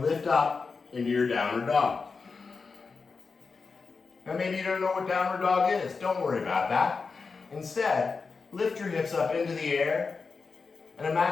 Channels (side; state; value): right; quieter; 4.7 dB